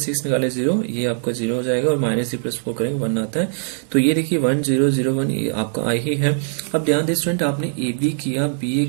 निकाले 0, ये आपका 0 हो जाएगा, और -3 + 4 करेंगे 1 आता है। तो ये देखिए 1 0 0 1 ये आपका आई ही है। अब ध्यान दें स्टूडेंट, आपने ए बी किया बी ए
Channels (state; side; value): silent; left; digital silence